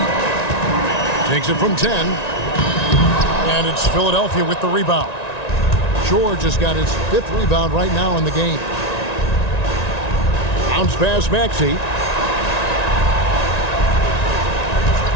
Takes it from 10. And it's Philadelphia with the rebound. George has got his 5th rebound right now in the game. Bounce pass Maxey.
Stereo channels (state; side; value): late; right; 1.9 ms